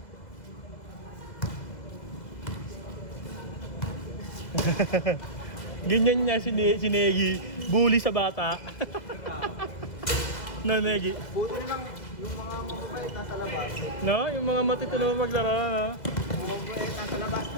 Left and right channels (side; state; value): right; late; 2.0 ms